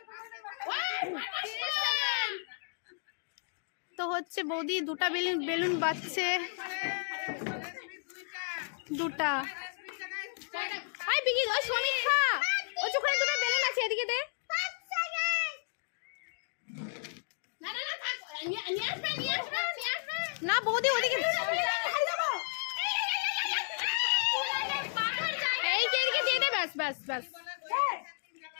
তো হচ্ছে বৌদি দুটা বেলুন বাজছে। দুটা। হাই বিকি, ওই সমীক্ষা, ওই চোখে দুটো বেলুন আছে, এদিকে দে। না বৌদি ওদিকে এই যে এদিকে দিয়ে দে। ব্যাস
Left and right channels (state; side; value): silent; right; digital silence